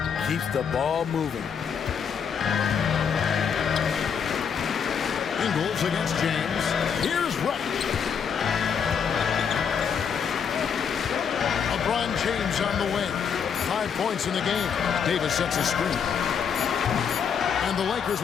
Keeps the ball moving. Ingles against James. Here's Reddish. LeBron James on the wing. 5 points in the game. Davis sets a screen. And the Lakers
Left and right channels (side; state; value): right; quieter; 7.0 dB